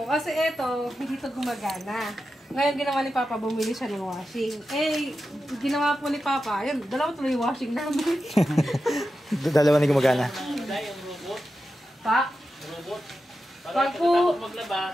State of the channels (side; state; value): both; normal; correlation 0.91